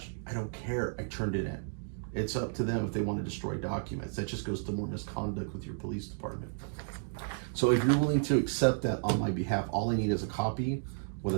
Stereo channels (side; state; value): left; silent; digital silence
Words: I don't care. I turned it in. It's up to them if they want to destroy documents. That just goes to more misconduct with your police department. So if you're willing to accept that on my behalf, all I need is a copy with a